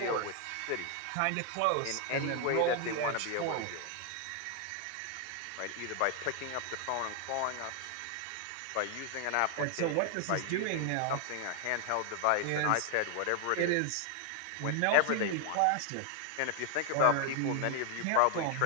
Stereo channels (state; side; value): different; both; correlation 0.00